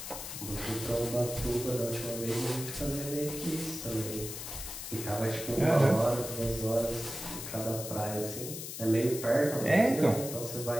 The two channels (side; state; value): left; noise; hiss, 8 dB below the sound